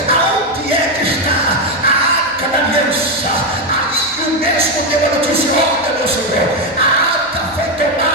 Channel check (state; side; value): noise; right; hum, 26 dB below the sound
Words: mesmo deu a notícia: olha, meu Senhor, a arca foi